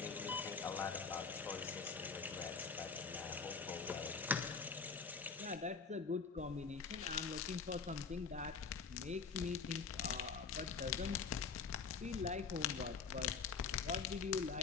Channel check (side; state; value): right; quieter; 5.4 dB